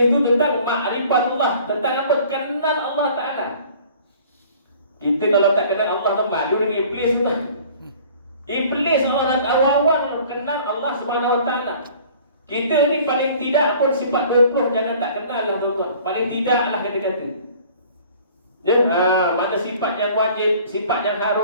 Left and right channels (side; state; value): both; inverted; correlation -0.50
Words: itu tentang ma'rifatullah, tentang apa? Kenal Allah Ta'ala. Kita kalau tak kenal Allah, malu dengan iblis tu. Iblis orang awal-awal kenal Allah Subhanahu Wa Ta'ala. Kita ni paling tidak pun sifat 20 jangan tak kenal lah tuan-tuan. Paling tidak lah kata-kata. Ya, mana sifat yang wajib, sifat yang